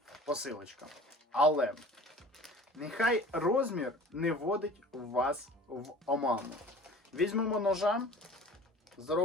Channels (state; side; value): normal; both; correlation 0.44